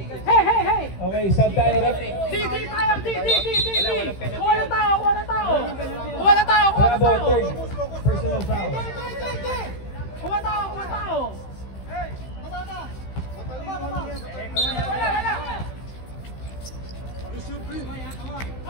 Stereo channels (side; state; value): right; late; 15 ms